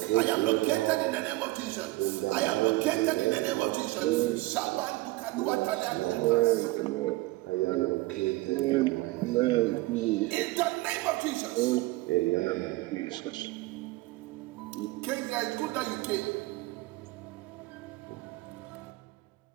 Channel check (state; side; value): quieter; left; 20.4 dB